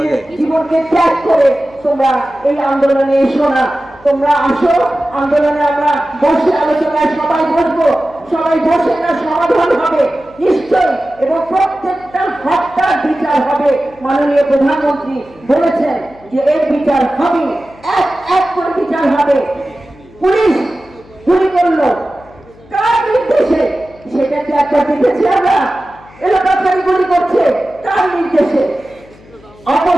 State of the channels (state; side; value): noise; left; hum, 25 dB below the sound